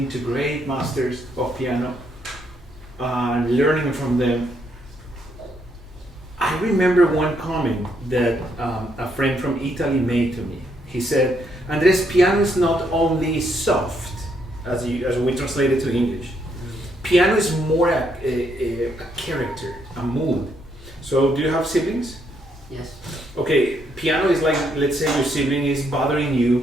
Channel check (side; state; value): both; normal; correlation 0.74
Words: to great masters of piano, and learning from them, I remember one comment that a friend from Italy made to me. He said, Andres, piano is not only soft, as we translate it to English. Piano is more a character, a mood. So do you have siblings? Yes. Okay, piano is like, let's say your sibling is bothering you.